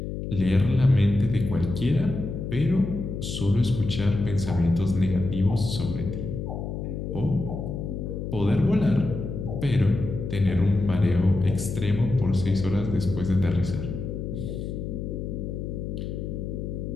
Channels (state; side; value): noise; left; hum, 5 dB below the sound